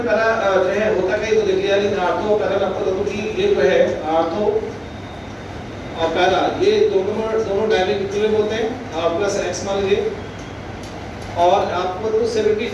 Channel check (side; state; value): both; identical; correlation 1.00